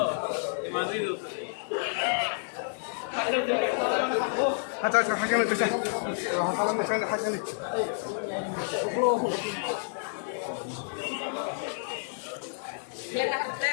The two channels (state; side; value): silent; right; digital silence